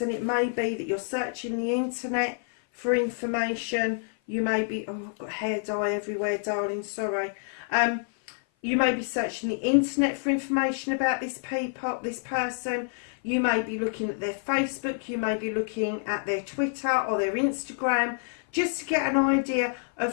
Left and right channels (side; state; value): right; silent; 55 dB below the other